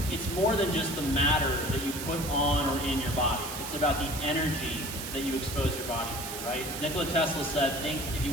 It's more than just the matter that you put on or in your body. It's about the energy that you expose your body to, right? Nikola Tesla said, if you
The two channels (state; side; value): noise; right; hiss, 7 dB below the sound